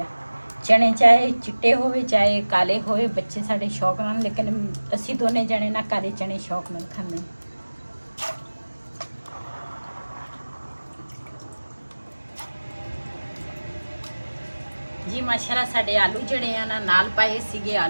ਆ ਚਣੇ, ਚਾਹੇ ਚਿੱਟੇ ਹੋਵੇ ਚਾਹੇ ਕਾਲੇ ਹੋਵੇ, ਬੱਚੇ ਸਾਡੇ ਸ਼ੌਕ ਨਾਲ, ਲੇਕਿਨ ਅਸੀਂ ਦੋਨੇ ਜਣੇ ਨਾ ਕਾਲੇ ਚਣੇ ਸ਼ੌਕ ਨਾਲ ਖਾਂਦੇ ਹਾਂ। ਜੀ ਮਾਸ਼ਾਅੱਲਾ ਸਾਡੇ ਆਲੂ ਜਿਹੜੇ ਆ ਨਾ ਨਾਲ ਪਾਏ ਸੀਗੇ,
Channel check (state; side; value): inverted; both; correlation -1.00